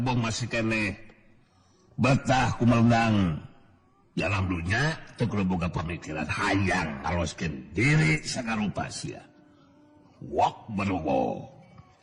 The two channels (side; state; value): both; identical; correlation 1.00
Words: masih keneh betah kumeundang dalam dunya teu kudu boga pamikiran hayang ngaloskeun diri sagarupa sia. Wok berwok.